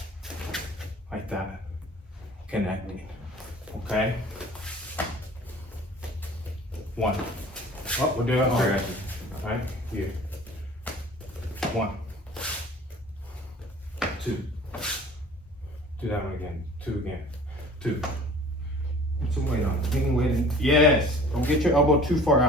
like that, connecting, okay? One. Oh, we're doing it. Right? Here. One. Two. Do that one again. Two again. Two. Put some weight on it. Any weight in. Yes. Don't get your elbow too far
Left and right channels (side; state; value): both; normal; correlation 0.47